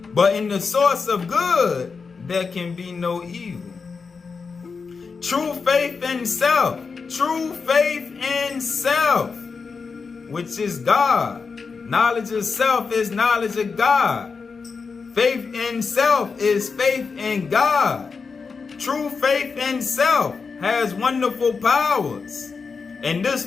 But in the source of good, there can be no evil. True faith in self, which is God. Knowledge of self is knowledge of God. Faith in self is faith in God. True faith in self has wonderful powers. And this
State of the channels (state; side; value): quieter; right; 5.0 dB